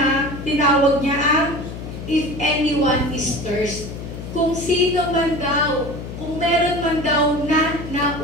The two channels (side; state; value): left; noise; hum, 9 dB below the sound